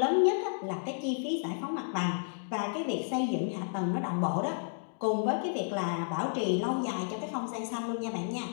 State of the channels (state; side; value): silent; right; 57 dB below the other